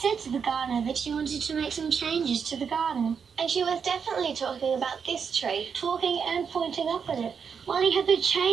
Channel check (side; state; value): left; quieter; 6.5 dB